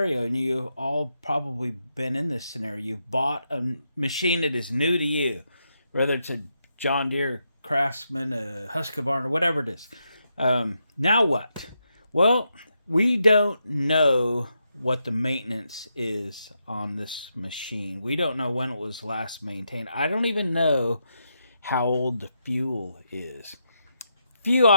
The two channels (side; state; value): both; inverted; correlation -0.83